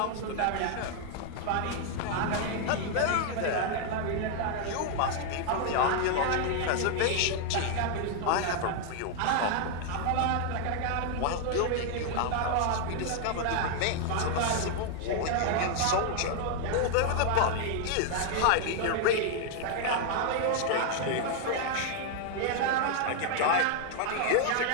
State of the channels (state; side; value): different; both; correlation 0.00